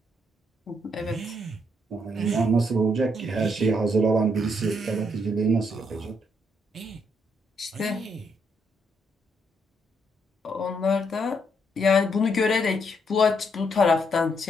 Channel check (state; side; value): normal; both; correlation 0.74